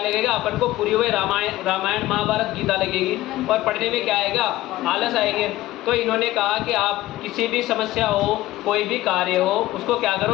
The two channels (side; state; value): right; quieter; 16.4 dB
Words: लगेगा? अपन को पूरी हुई रामायण महाभारत गीता लगेगी और पढ़ने में क्या आएगा? आलस आएंगे। तो इन्होंने कहा कि आप किसी भी समस्या हो, कोई भी कार्य हो, उसको क्या